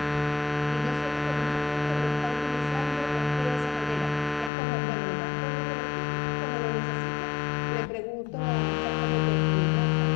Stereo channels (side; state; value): right; drops out; at 4.5 s